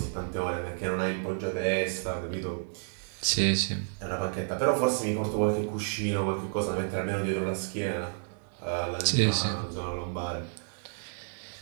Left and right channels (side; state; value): left; silent; digital silence